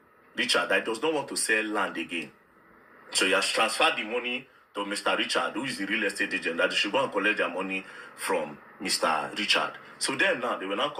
Richard, that he does not want to sell land again. So he has transferred the money to Mr. Richard, who is the real estate agent, that they should go and collect their money from Mr. Richard. So then now, they were now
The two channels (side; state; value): both; identical; correlation 1.00